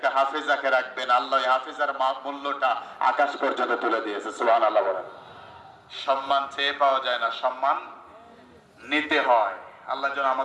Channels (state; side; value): identical; both; correlation 1.00